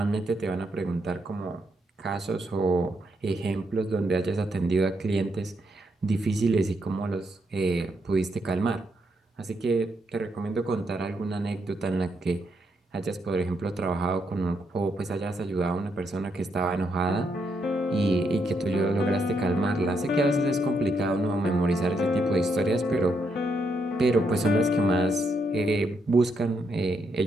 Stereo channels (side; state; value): both; normal; correlation 0.78